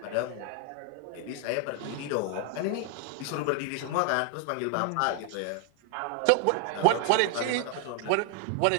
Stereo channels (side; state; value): both; different; correlation 0.00